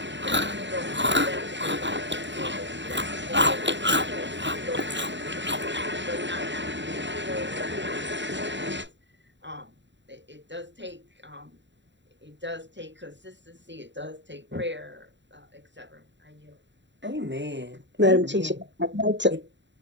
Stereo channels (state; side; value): late; left; 0.53 ms